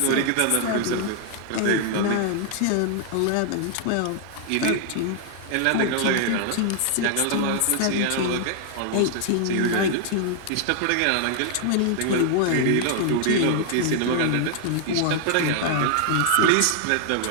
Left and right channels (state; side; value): different; both; correlation 0.00